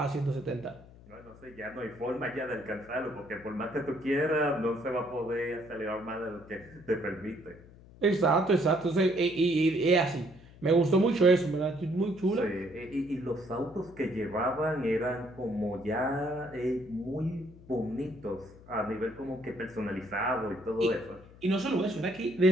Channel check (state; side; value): noise; left; hum, 21 dB below the sound